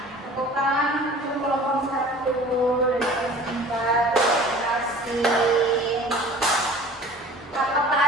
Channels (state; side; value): normal; both; correlation 0.45